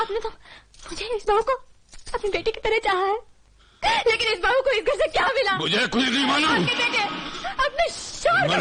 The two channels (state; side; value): identical; both; correlation 1.00